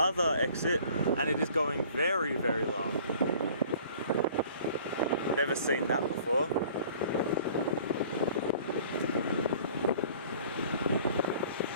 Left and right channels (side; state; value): both; inverted; correlation -0.51